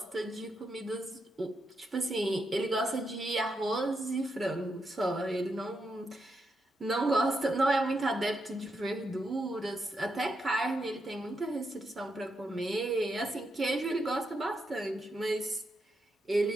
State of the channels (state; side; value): normal; both; correlation 0.83